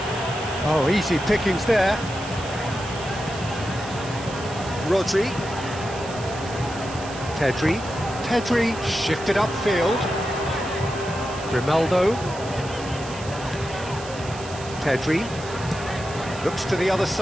Oh, easy pickings there. Rodri. Pedri shifted upfield. Grimaldo. Pedri. Looks to the other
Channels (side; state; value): right; noise; hiss, 14 dB below the sound